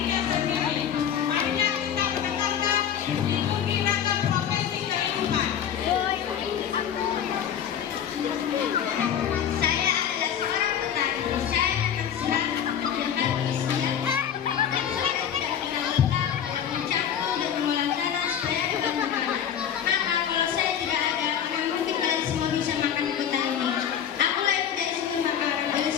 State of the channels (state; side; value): quieter; right; 9.0 dB